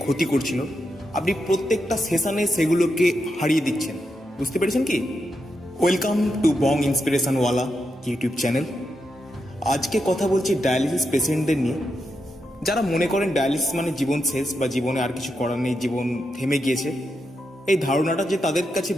ক্ষতি করছিল, আপনি প্রত্যেকটা সেশনে সেগুলোকে হারিয়ে দিচ্ছেন। বুঝতে পেরেছেন কি? ওয়েলকাম টু বং ইন্সপিরেশনওয়ালা ইউটিউব চ্যানেল। আজকে কথা বলছি ডায়ালিসিস পেশেন্টদের নিয়ে, যারা মনে করেন ডায়ালিসিস মানে জীবন শেষ বা জীবনে আর কিছু করার নেই, জীবন থেমে গিয়েছে। এই ধারণাটা যে তাদের কাছে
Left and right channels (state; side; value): normal; both; correlation 0.85